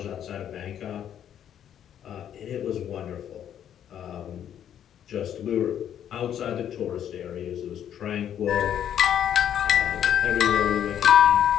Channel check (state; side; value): quieter; right; 9.8 dB